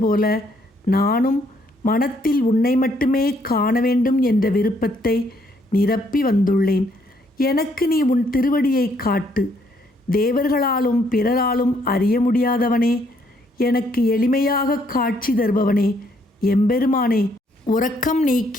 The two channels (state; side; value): normal; both; correlation 0.69